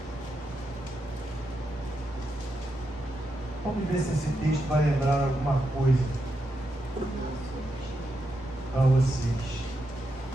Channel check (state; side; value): normal; both; correlation 0.85